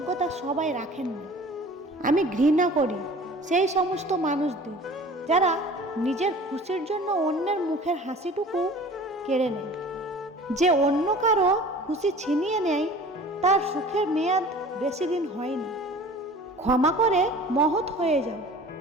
সবাই রাখেন না। আমি ঘৃণা করি সেই সমস্ত মানুষদের যারা নিজের খুশির জন্য অন্যের মুখের হাসিটুকু কেড়ে নেয়। যে অন্য কারো খুশি ছিনিয়ে নেয়, তার সুখের মেয়াদ বেশি দিন হয় না। ক্ষমা করে মহৎ হয়ে যাও,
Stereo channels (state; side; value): normal; both; correlation 0.44